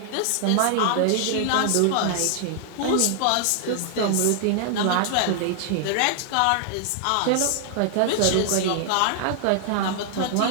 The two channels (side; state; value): both; different; correlation 0.00